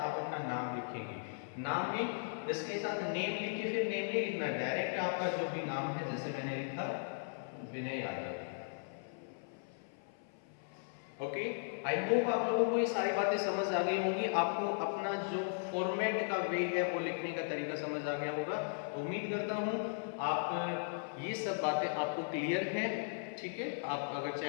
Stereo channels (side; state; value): right; silent; 53 dB below the other